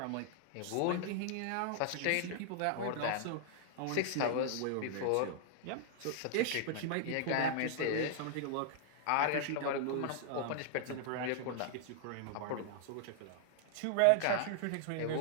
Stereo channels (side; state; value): both; different; correlation -0.01